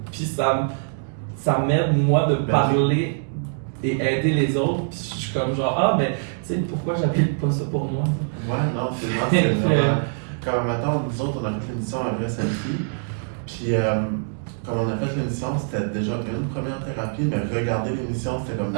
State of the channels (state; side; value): silent; left; digital silence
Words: puis ça m'aide, moi, de parler et aider les autres. Puis je suis comme genre, ah, ben, tu sais, pourquoi j'applique pas ça pour moi? Ouais, non, c'est vraiment. Comme maintenant, nous autres, on a fait l'émission à Vrai Selfie. Puis, comme on a fait l'émission, c'était déjà une première thérapie, mais regarder l'émission, c'était comme